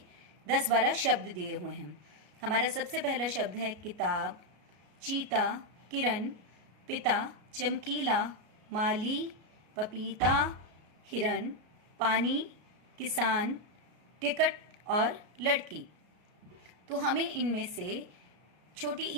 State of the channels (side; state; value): left; late; 33 ms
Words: 10-12 शब्द दिए हुए हैं। हमारा सबसे पहला शब्द है किताब, चीता, किरण, पिता, चमकीला, माली, पपीता, हिरन, पानी, किसान, टिकट और लड़की। तो हमें इनमें से छोटी